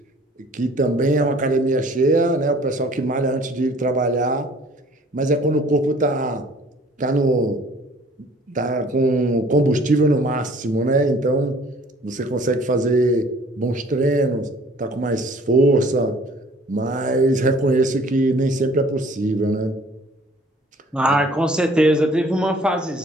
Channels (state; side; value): normal; both; correlation 0.54